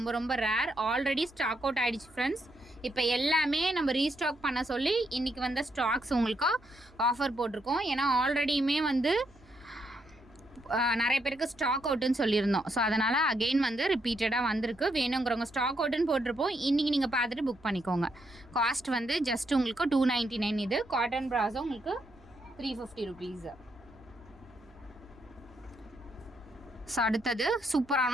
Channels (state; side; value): noise; right; hum, 27 dB below the sound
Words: ரொம்ப ரேர், ஆல்ரெடி ஸ்டாக் அவுட் ஆகிடுச்சு ஃப்ரெண்ட்ஸ். இப்போ எல்லாமே நம்ம ரீஸ்டாக் பண்ண சொல்லி இன்றைக்கி வந்த ஸ்டாக்ஸ் உங்களுக்கு ஆஃபர் போட்டிருக்கோம். ஏன்னா ஆல்ரெடியுமே வந்து நிறைய பேருக்கு ஸ்டாக் அவுட்டுன்னு சொல்லியிருந்தோம். ஸோ அதனால் அகெயின் வந்து ரிப்பீட்டடாக வந்திருக்கு. வேணுங்கிறவங்க ஸ்டாக் அவுட்டுன்னு போட்டிருப்போம், இன்றைக்கி நீங்கள் பார்த்துட்டு புக் பண்ணிக்கோங்க. காஸ்ட் வந்து ஜஸ்ட் உங்களுக்கு 299. இது காட்டன் பிராசோ உங்களுக்கு 350 ருபீஸ். ஸோ அடுத்தது